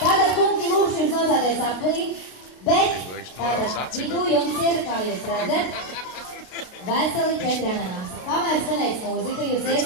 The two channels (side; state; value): right; late; 32 ms